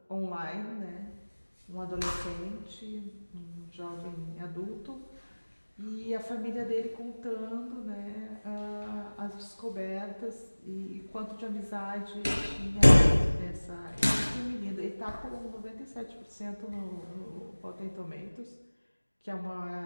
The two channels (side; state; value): both; inverted; correlation -1.00